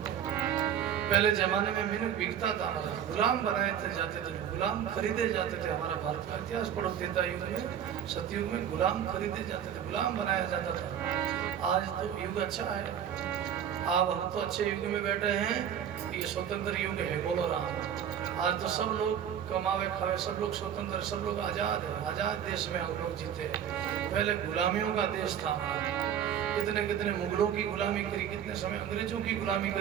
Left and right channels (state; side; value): quieter; left; 9.2 dB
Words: पहले जमाने में मीनू बिकता था हमारा, गुलाम बनाए थे जाते थे, गुलाम खरीदे जाते थे। हमारा भारत का इतिहास पढ़ो, त्रेता युग में, सतयुग में गुलाम खरीदे जाते थे, गुलाम बनाया जाता था। आज तो युग अच्छा है, अब हम तो अच्छे युग में बैठे हैं, ये स्वतंत्र युग है। बोलो राम। आज तो सब लोग कमावे खावे, सब लोग स्वतंत्र, सब लोग आजाद है, आजाद देश में हम लोग जीते हैं। पहले गुलामियों का देश था हमारा, कितने कितने मुगलों की गुलामी करी, कितने समय अंग्रेजों की गुलामी